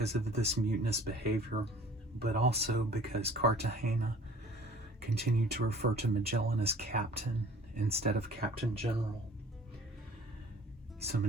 of this mutinous behavior, but also because Cartagena continued to refer to Magellan as captain instead of Captain General. So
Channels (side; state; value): both; normal; correlation 0.49